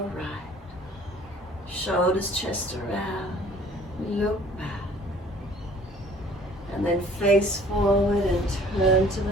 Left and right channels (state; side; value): normal; both; correlation 0.53